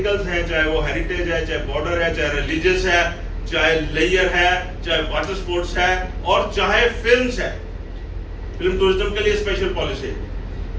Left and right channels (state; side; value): identical; both; correlation 1.00